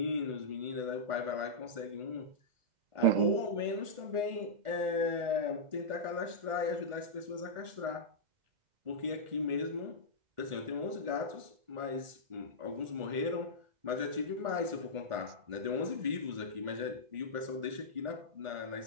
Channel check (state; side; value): late; left; 1.4 ms